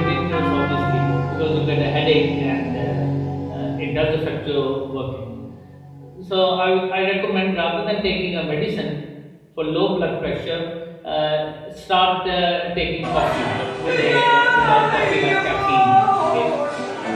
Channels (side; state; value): both; identical; correlation 1.00